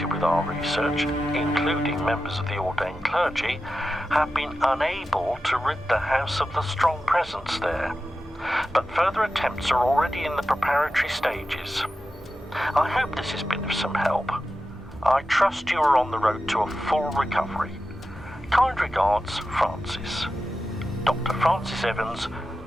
with our research, including members of the ordained clergy, have been unable to rid the house of the strong presence there, but further attempts are already in the preparatory stages. I hope this has been of some help. I trust you are on the road to a full recovery. Kind regards, Francis. Dr. Francis Evans,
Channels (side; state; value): both; normal; correlation 0.92